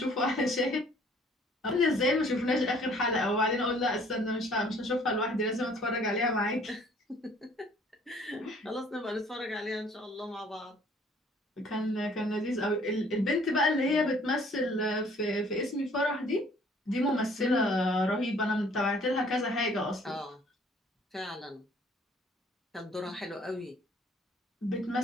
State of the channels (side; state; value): both; normal; correlation 0.57